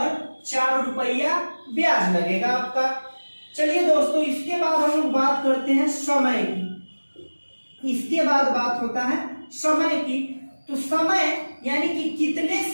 4 रुपया ब्याज लगेगा आपका। चलिए दोस्तों, इसके बाद हम लोग बात करते हैं समय की। इसके बाद बात होता है समय की। तो समय यानी कि कितने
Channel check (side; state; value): both; inverted; correlation -1.00